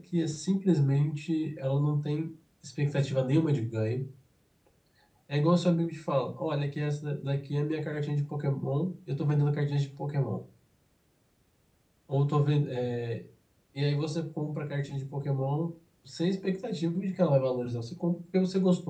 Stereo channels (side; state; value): both; identical; correlation 1.00